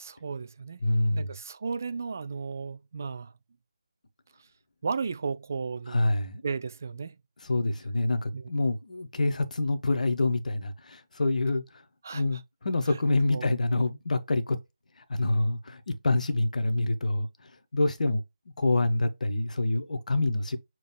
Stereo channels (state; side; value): inverted; both; correlation -0.94